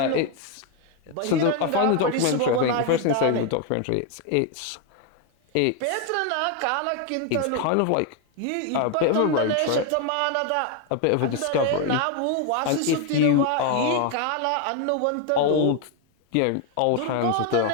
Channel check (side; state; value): both; different; correlation 0.01